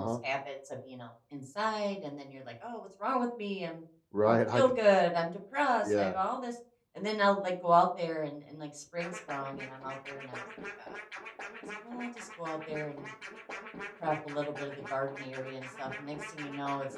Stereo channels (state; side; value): identical; both; correlation 1.00